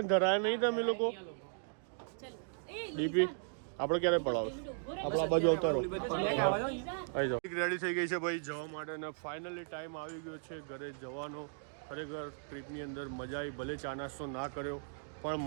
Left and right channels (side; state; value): left; silent; digital silence